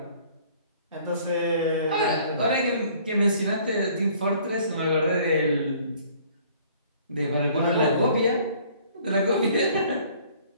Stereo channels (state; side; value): inverted; both; correlation -0.56